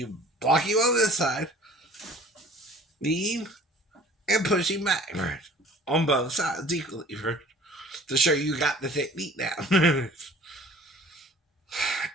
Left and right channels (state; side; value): normal; both; correlation 0.49